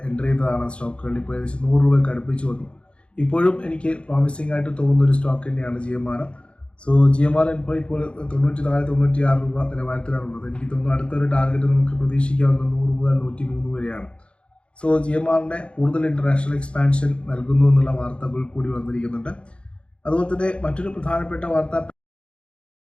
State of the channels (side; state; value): right; late; 0.058 ms